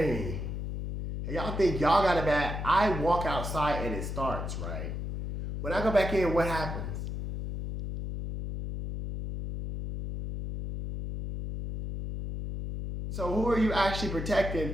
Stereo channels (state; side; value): noise; left; hum, 5 dB below the sound